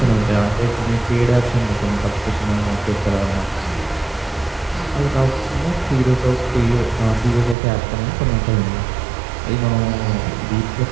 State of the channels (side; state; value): left; drops out; at 7.6 s